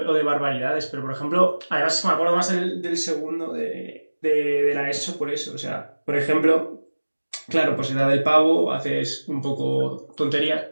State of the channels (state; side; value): inverted; both; correlation -1.00